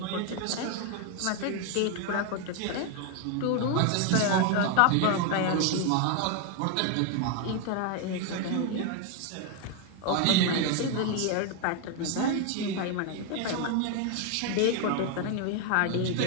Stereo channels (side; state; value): both; different; correlation 0.01